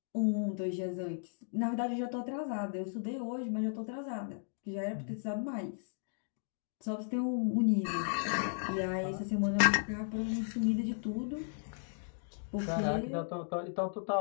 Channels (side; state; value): right; silent; digital silence